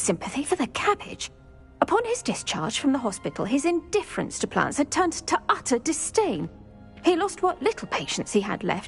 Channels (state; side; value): identical; both; correlation 1.00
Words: for the cabbage. Upon his discharge from the hospital, his indifference to plants had turned to utter disdain. He lost what little patience he had